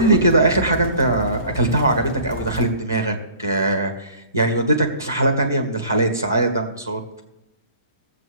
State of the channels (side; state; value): both; inverted; correlation -0.49